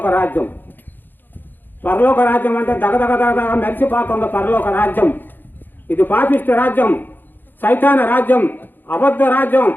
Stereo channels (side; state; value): right; late; 0.092 ms